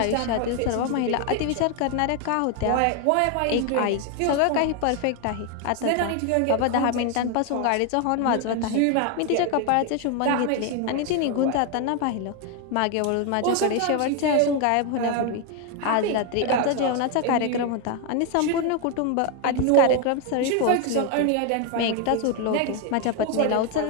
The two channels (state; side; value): different; both; correlation 0.01